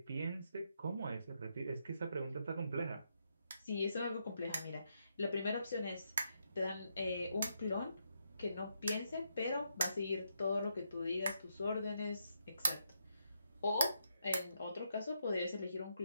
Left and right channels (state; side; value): inverted; both; correlation -0.79